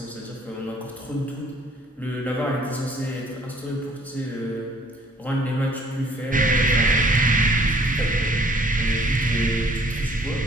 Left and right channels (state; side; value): normal; both; correlation 0.58